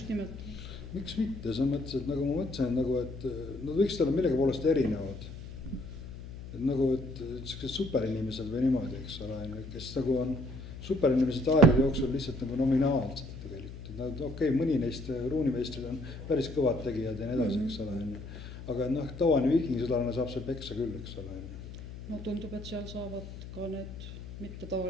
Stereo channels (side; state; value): left; noise; hum, 12 dB below the sound